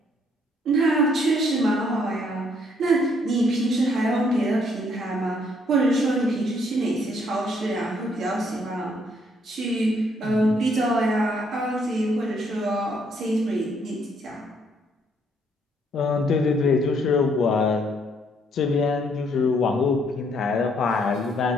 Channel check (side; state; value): both; normal; correlation 0.68